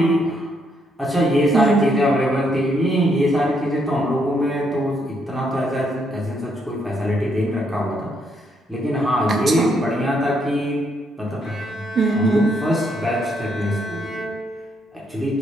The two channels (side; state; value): both; normal; correlation 0.74